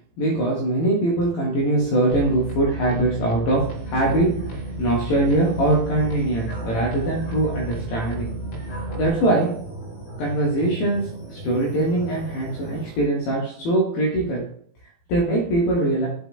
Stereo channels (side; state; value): right; late; 18 ms